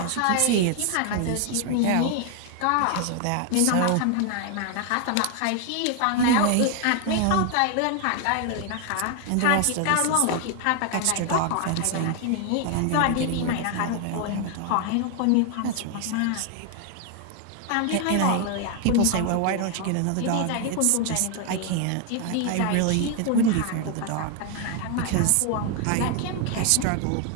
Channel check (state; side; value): different; both; correlation 0.01